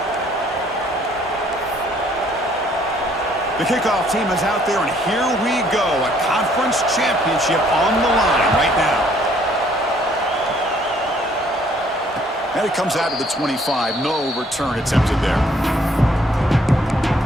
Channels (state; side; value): normal; both; correlation 0.63